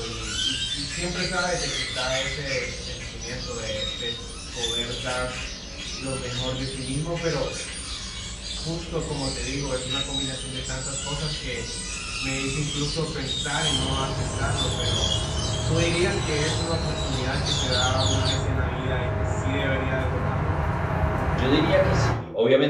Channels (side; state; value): both; identical; correlation 1.00